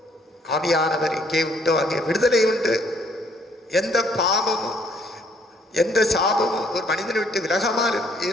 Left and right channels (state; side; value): normal; both; correlation 0.66